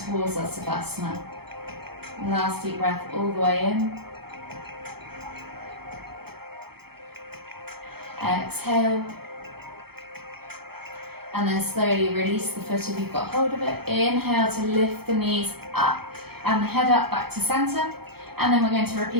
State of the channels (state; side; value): late; left; 0.96 ms